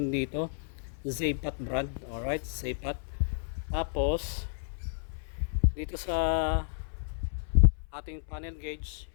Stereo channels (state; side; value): silent; right; 57 dB below the other